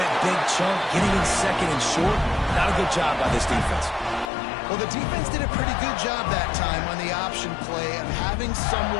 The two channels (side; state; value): right; drops out; at 4.2 s